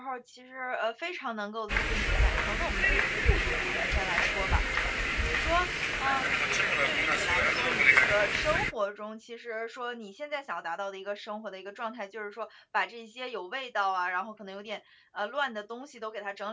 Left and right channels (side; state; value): both; identical; correlation 1.00